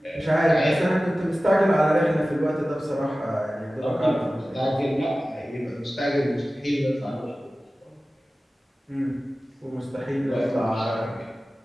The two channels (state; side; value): normal; both; correlation 0.96